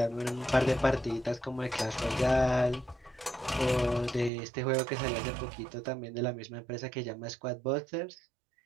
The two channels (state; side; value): drops out; left; at 4.3 s